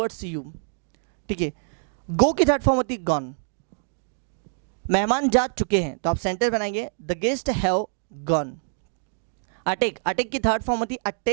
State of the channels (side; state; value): left; silent; digital silence